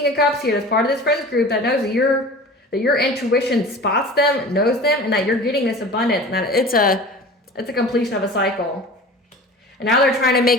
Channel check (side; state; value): both; normal; correlation 0.38